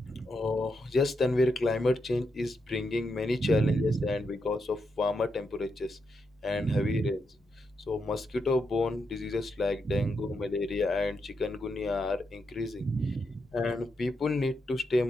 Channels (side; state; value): both; normal; correlation 0.83